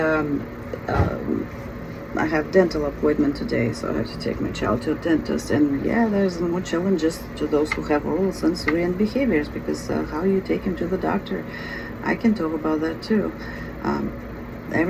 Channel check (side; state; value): both; identical; correlation 1.00